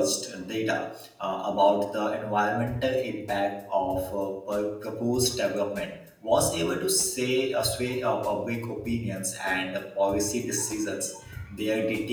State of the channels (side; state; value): both; identical; correlation 1.00